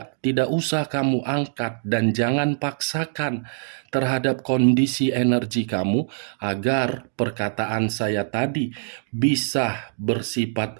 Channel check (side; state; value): left; silent; digital silence